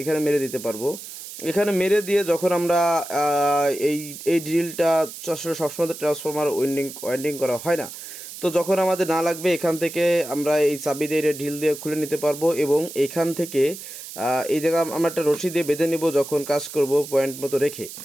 মেরে দিতে পারবো। এখানে মেরে দিয়ে যখন আমরা এই ড্রিলটা সবসময় ট্রান্সফরমার ওয়াইন্ডিং করা হয় না, তো যখন আমাদের না লাগবে এখান থেকে আমরা এই চাবি দিয়ে ঢিল দিয়ে খুলে নিতে পারবো এবং এখান থেকে এই জায়গা আমরা একটা রশি দিয়ে বেঁধে নিব যখন কাজ করব পয়েন্ট মতো রেখে।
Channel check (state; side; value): noise; right; hiss, 12 dB below the sound